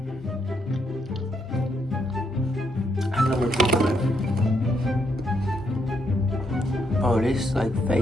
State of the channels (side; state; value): both; normal; correlation 0.76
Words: I know where people live. Oh, this like